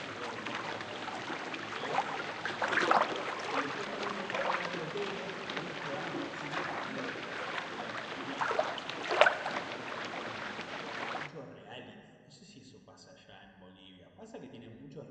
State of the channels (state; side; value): identical; both; correlation 1.00